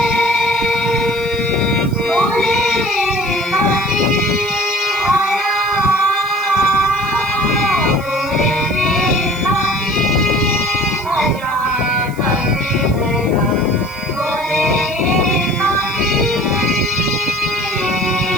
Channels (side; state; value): right; noise; hiss, 21 dB below the sound